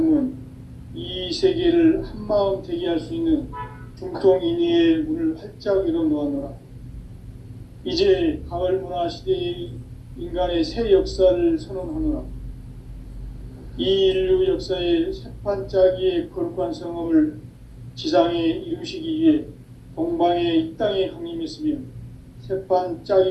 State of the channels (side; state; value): both; identical; correlation 1.00